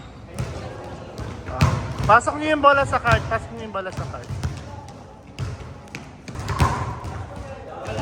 Pasok niyo yung bola sa card. Pasok niyo yung bola sa card.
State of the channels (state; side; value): identical; both; correlation 1.00